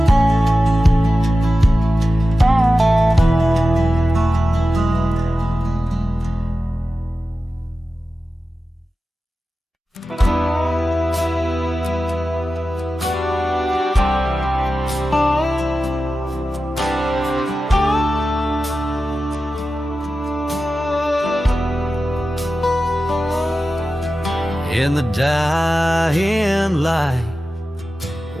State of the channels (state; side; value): normal; both; correlation 0.94